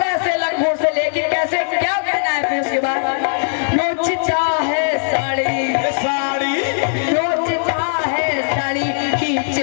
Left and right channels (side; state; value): right; silent; 57 dB below the other